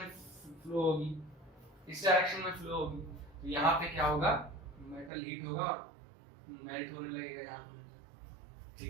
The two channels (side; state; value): left; drops out; at 5.1 s